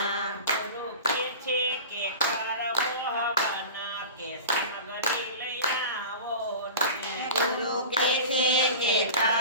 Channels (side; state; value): both; inverted; correlation -0.34